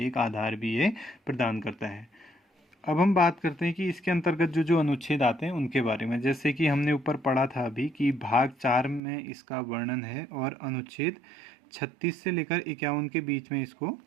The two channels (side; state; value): left; drops out; at 9.0 s